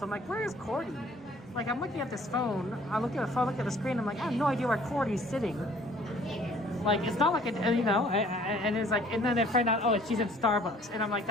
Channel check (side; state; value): both; normal; correlation 0.55